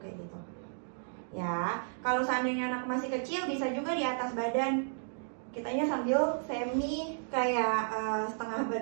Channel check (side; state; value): left; silent; digital silence